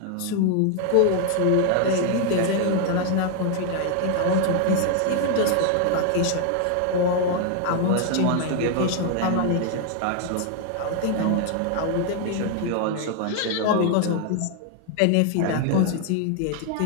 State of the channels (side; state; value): both; different; correlation 0.00